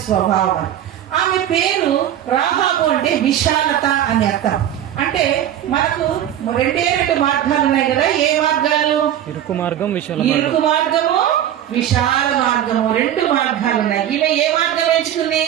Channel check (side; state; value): left; quieter; 11.1 dB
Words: స్వభావం. ఆమె పేరు రాహాబు అంటే విశాలత అని అర్థం. అంటే మనకు 2 మార్గాలు ఉన్నాయి కదా. ఏ మార్గాలు? ఇరుకు మార్గం, ఇరుకు మార్గము, విశాల మార్గము, 2 మార్గాలు ఉన్నాయి. ఈమె ఏ మార్గం ఎంచుకుంది?